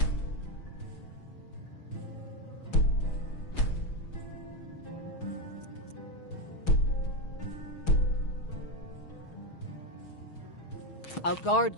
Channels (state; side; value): late; right; 6.3 ms